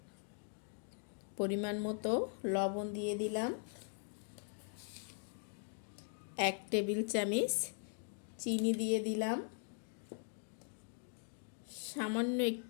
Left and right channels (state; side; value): silent; right; 51 dB below the other